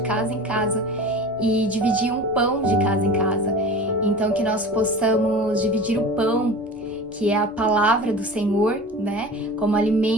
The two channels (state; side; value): normal; both; correlation 0.36